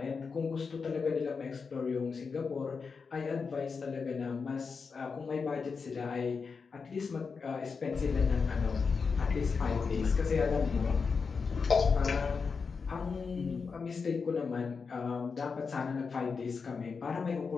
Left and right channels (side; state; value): right; quieter; 5.2 dB